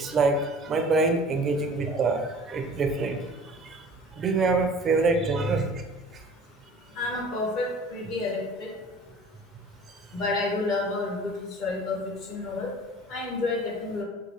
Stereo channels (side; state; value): both; normal; correlation 0.45